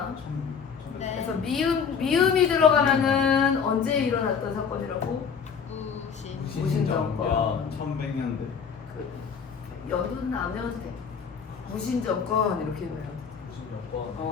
네. 그래서 미음이 들어가면은 언제 일어났던 사건이라고? 무신정권. 야 1100년대. 그 연도는 안 외워도 돼. 무신정권 이렇게 해요.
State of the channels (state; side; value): quieter; right; 6.4 dB